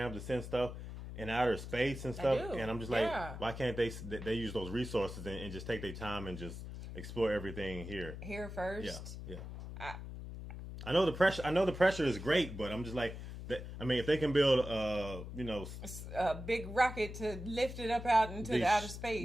to send stuff in outer space and stuff. And I'm just like, why can't they use those resources and just take their time and just explore everything here first? Yeah. I know the pressure. I know the pressure is great, but I'm just like, I mean, if they can build, a big rocket to lift it up out into the outer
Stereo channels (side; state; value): left; noise; hum, 9 dB below the sound